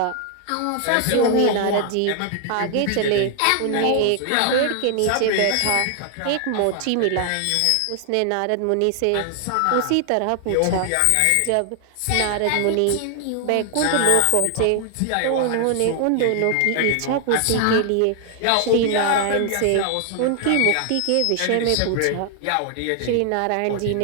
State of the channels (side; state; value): both; different; correlation 0.00